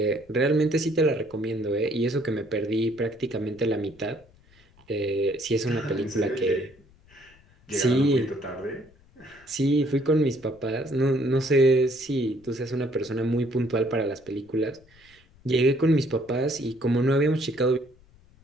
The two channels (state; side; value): noise; left; rumble, 29 dB below the sound